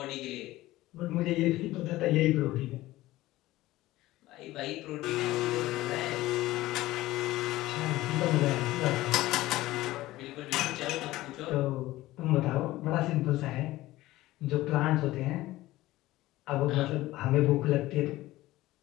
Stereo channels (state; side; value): quieter; right; 17.1 dB